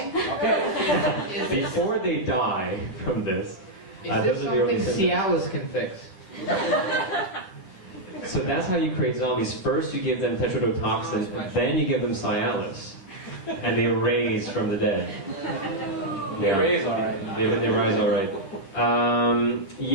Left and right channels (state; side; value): late; right; 10 ms